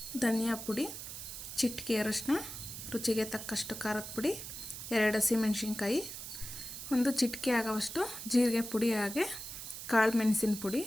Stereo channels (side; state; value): right; noise; hiss, 9 dB below the sound